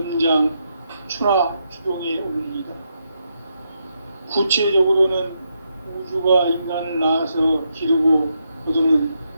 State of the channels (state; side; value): inverted; both; correlation -0.81